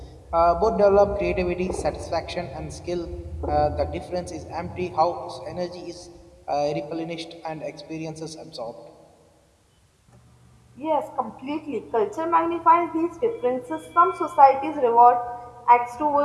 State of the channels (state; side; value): identical; both; correlation 1.00